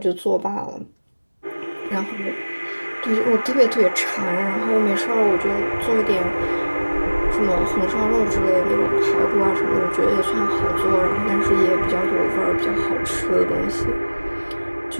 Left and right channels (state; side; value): inverted; both; correlation -1.00